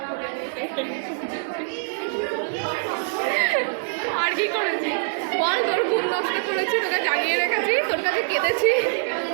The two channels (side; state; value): left; silent; digital silence